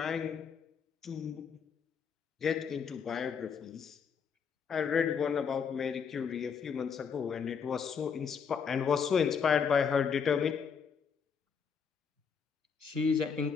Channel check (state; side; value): quieter; right; 6.5 dB